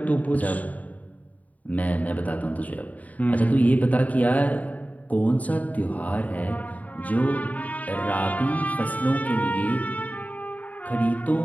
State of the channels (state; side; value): late; right; 0.073 ms